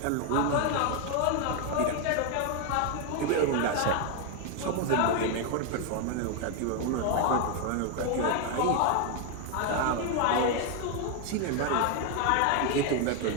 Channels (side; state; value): both; different; correlation 0.01